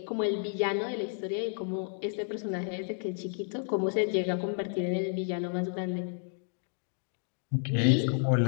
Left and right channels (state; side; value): silent; right; 57 dB below the other